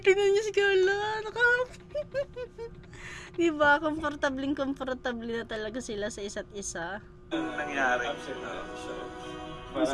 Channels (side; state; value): both; identical; correlation 1.00